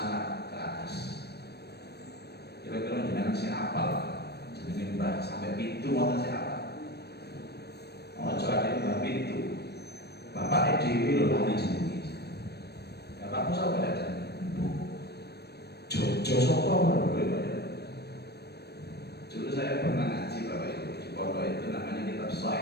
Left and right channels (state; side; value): late; right; 0.47 ms